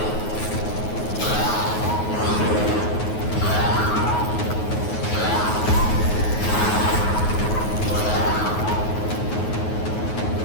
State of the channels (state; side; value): late; right; 9.4 ms